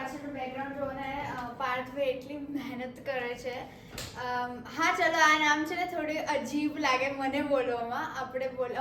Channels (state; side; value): identical; both; correlation 1.00